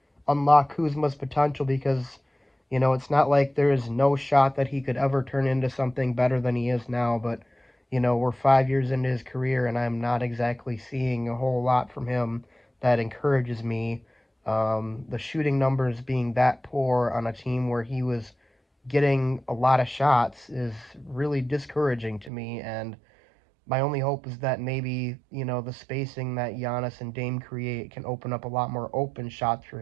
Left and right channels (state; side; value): drops out; left; at 22.3 s